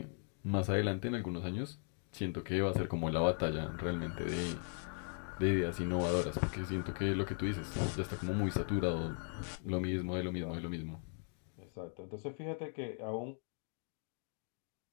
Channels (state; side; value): silent; right; 52 dB below the other